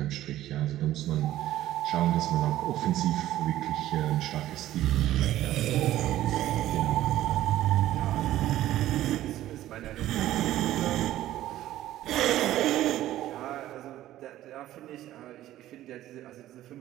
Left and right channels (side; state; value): left; quieter; 13.9 dB